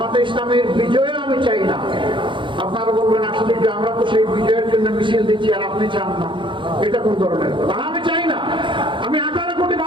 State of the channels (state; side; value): late; left; 0.24 ms